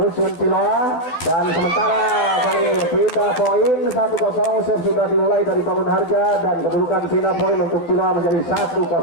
Ciloa. Dan sementara kali pindah poin 1-0, save sudah dimulai dari Bangun Harja dan kedudukan pindah poin untuk Ciloa menjadi 1-0.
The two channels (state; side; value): late; right; 12 ms